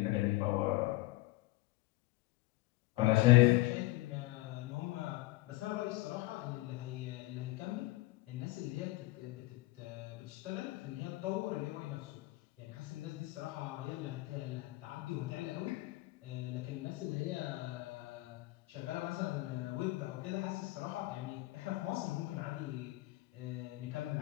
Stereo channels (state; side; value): quieter; right; 19.9 dB